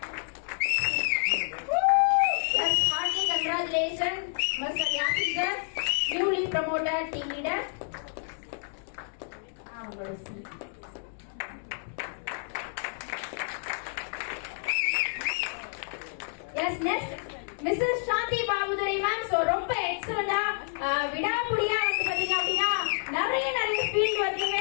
Yes, hearty congratulations, Mr. Yasin sir, newly promoted team leader. அவங்களோட seat. Yes, next Mrs. Shanti Babudari ma'am. So ரொம்ப எக்ஸலென்ட்டா விடாமுடியா வந்து பாத்தீங்க அப்படின்னா நிறைய field working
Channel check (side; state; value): right; silent; 59 dB below the other